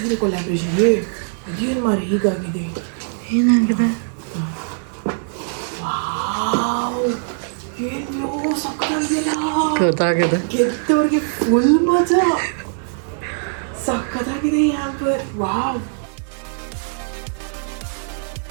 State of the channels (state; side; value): silent; left; 65 dB below the other